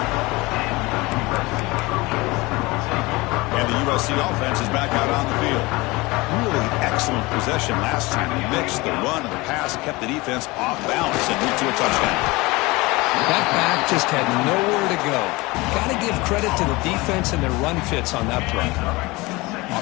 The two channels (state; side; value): quieter; right; 22.8 dB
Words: And the USC offense is back out on the field. Really excellent possession last time. He mixed the run and the pass, kept the defense off balance and moved to a touchdown. That back just had nowhere to go. Got to give credit to the defense and their run fits on that play.